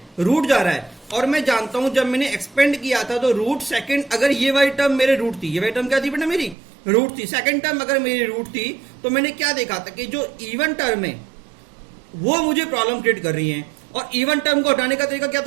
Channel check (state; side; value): drops out; left; at 6.6 s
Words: रूट जा रहा है। और मैं जानता हूं जब मैंने एक्सपेंड किया था तो रूट सेकंड, अगर ये वाली टर्म मेरे रूट थी, ये वाली टर्म क्या थी बेटा मेरी रूट थी, सेकंड टर्म अगर मेरी रूट थी, तो मैंने क्या देखा था कि जो इवन टर्म है वो मुझे प्रॉब्लम क्रिएट कर रही है। और इवन टर्म को हटाने का तरीका क्या